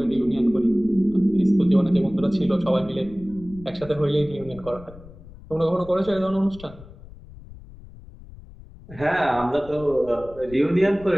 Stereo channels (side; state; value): left; noise; rumble, 18 dB below the sound